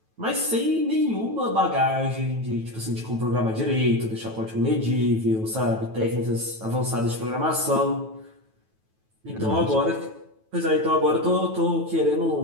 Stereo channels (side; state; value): left; late; 9.2 ms